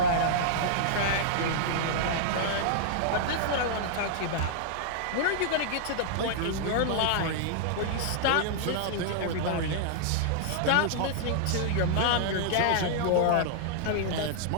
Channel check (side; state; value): both; different; correlation -0.01